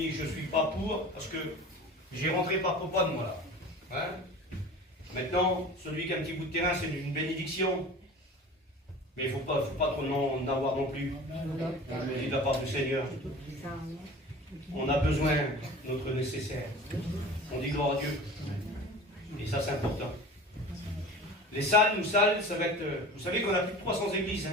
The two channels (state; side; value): normal; both; correlation 0.38